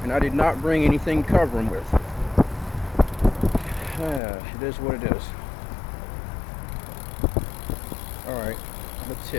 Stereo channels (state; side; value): drops out; right; at 4.2 s